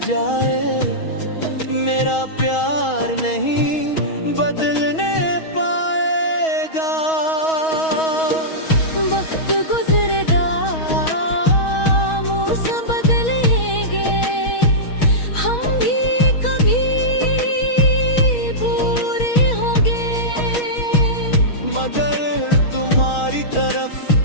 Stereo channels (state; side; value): late; right; 6.3 ms